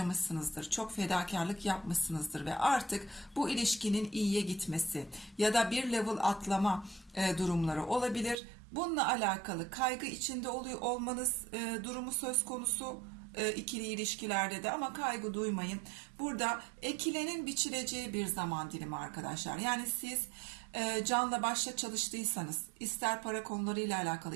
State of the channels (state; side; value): drops out; left; at 8.3 s